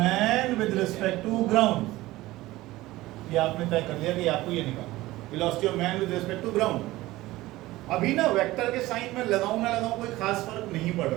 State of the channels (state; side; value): quieter; left; 17.9 dB